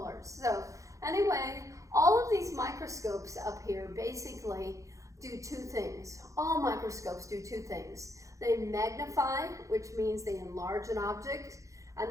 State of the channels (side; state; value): left; late; 0.15 ms